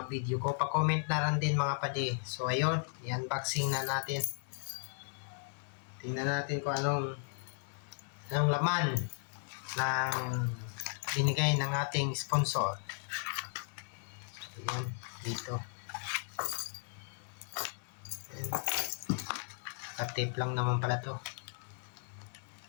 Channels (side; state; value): right; silent; 54 dB below the other